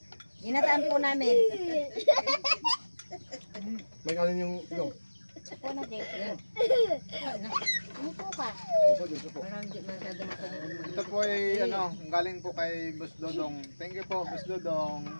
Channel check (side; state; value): both; inverted; correlation -1.00